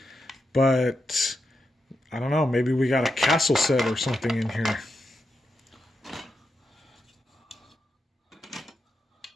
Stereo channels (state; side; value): normal; both; correlation 0.86